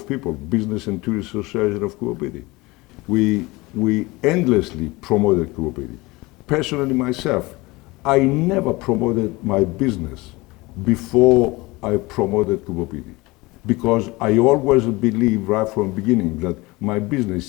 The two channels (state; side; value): quieter; right; 22.4 dB